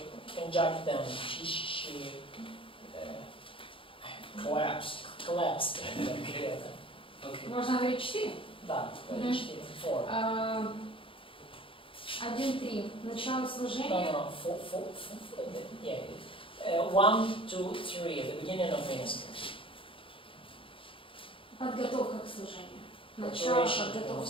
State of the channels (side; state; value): right; late; 0.25 ms